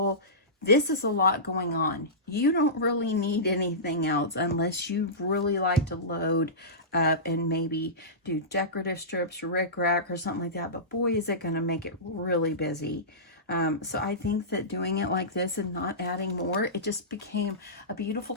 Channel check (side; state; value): both; normal; correlation -0.20